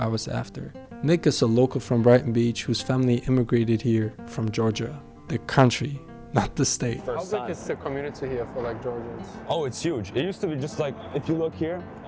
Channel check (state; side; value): identical; both; correlation 1.00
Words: after. Nick is a local from Brighton Beach whose family immigrated here from Georgia, the country, not the state. How big is the community here for like Georgians? Oh, it's huge. It used to be just like, if you look here,